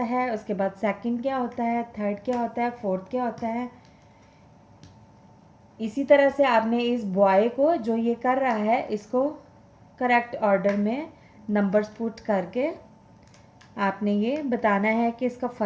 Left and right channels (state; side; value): identical; both; correlation 1.00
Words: है, उसके बाद सेकंड क्या होता है, थर्ड क्या होता है, फोर्थ क्या होता है. इसी तरह से आपने इस बॉय को जो ये कर रहा है इसको करेक्ट ऑर्डर में नंबर्स पुट करके आपने ये बताना है कि इसका